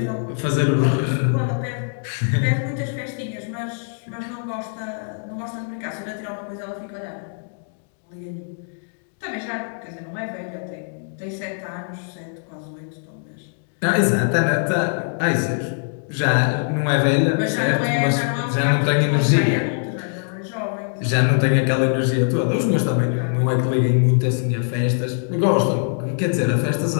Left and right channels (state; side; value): silent; right; digital silence